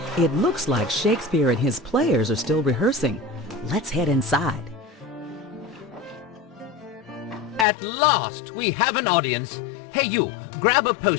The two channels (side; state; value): right; drops out; at 7.7 s